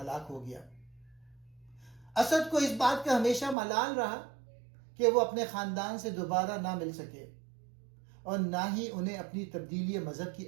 ہو گیا۔ اسد کو اس بات کا ہمیشہ ملال رہا کہ وہ اپنے خاندان سے دوبارہ نہ مل سکے اور نہ ہی انہیں اپنی تبدیلی مذہب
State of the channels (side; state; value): left; drops out; at 3.6 s